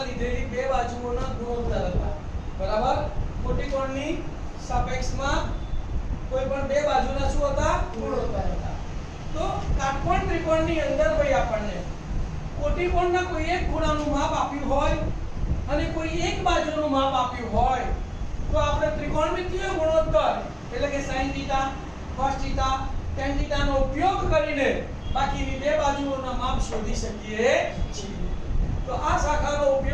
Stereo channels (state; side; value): identical; both; correlation 1.00